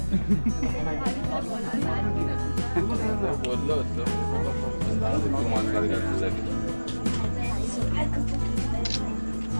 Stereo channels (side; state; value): both; inverted; correlation -1.00